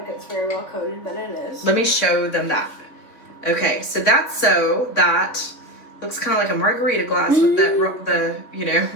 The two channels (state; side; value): late; right; 3.3 ms